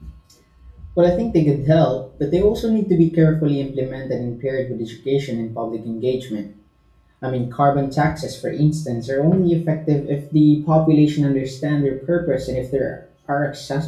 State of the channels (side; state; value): both; identical; correlation 1.00